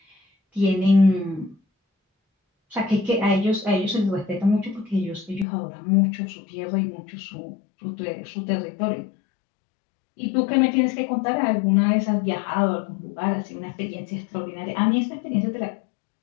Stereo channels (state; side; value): drops out; right; at 5.5 s